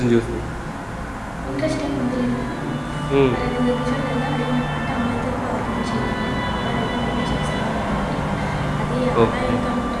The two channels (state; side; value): identical; both; correlation 1.00